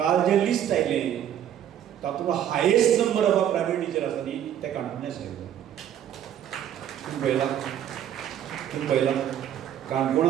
जें लिस्ट आयलें तातूंत highest number of primary teacher आसा न्ही ते काणकोणा आशिल्ले तुमी पळयलां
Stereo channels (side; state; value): left; quieter; 10.4 dB